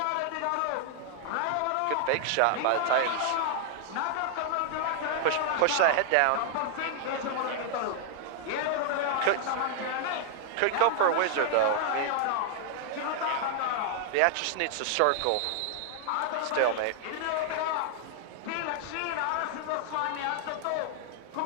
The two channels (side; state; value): both; different; correlation 0.00